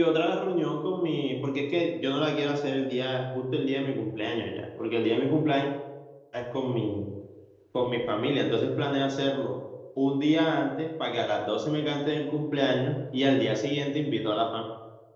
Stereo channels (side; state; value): both; identical; correlation 1.00